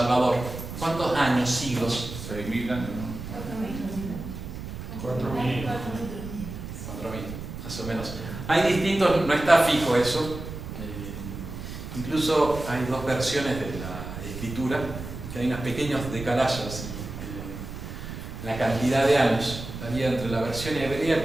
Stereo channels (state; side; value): noise; right; rumble, 9 dB below the sound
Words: ¿Cuántos años, siglos? 6.000 años, ¿no? 4.000. 4.000, más o menos. Hay distintos, no está fijo eso. Incluso hay dos versiones de la escritura, que hay unos pequeños decalagos en la cantidad de años. Estaría entre la versión hebrea,